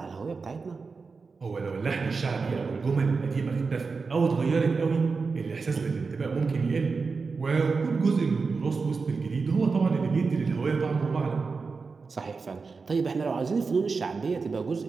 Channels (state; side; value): quieter; left; 4.6 dB